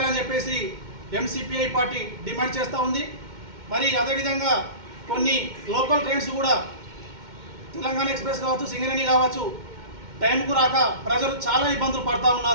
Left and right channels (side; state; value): left; late; 2.1 ms